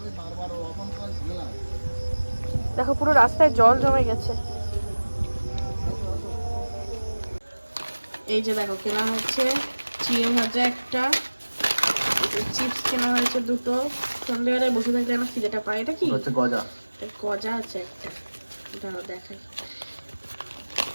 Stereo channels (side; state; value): both; inverted; correlation -1.00